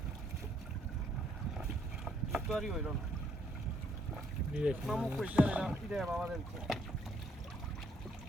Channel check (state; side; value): normal; both; correlation 0.69